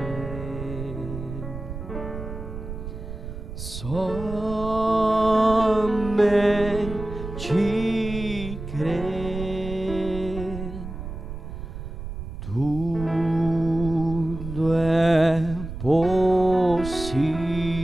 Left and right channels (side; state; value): right; noise; rumble, 9 dB below the sound